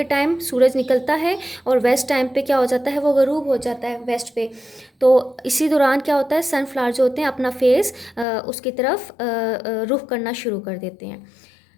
टाइम सूरज निकलता है और वेस्ट टाइम पे क्या हो जाता है, वो गरूब हो जाता है वेस्ट पे। तो इसी दौरान क्या होता है, सनफ्लावर जो होते हैं अपना फेस उसकी तरफ रुख करना शुरू कर देते हैं।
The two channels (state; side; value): drops out; right; at 8.2 s